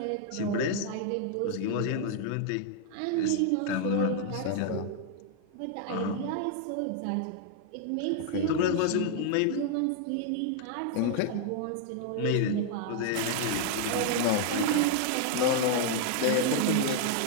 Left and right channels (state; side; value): different; both; correlation 0.00